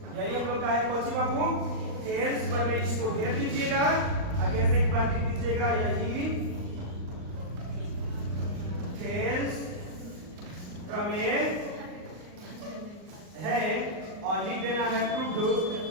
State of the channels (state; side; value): late; left; 39 ms